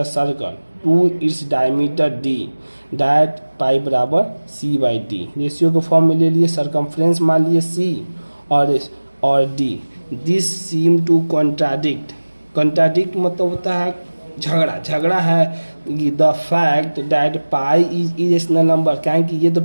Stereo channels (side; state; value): both; inverted; correlation -1.00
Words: circle to its diameter D that pi बराबर सी बाई डी। रेशियो के फॉर्म में ले लिए, सरकमफ्रेंस मान लिए सी और D. This seem to contradict. Contradict मतलब होता है झगड़ा है। The fact that pi is irrational number, क्या कि ये तो